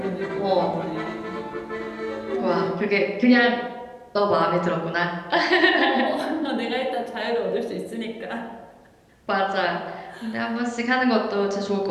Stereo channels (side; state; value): both; identical; correlation 1.00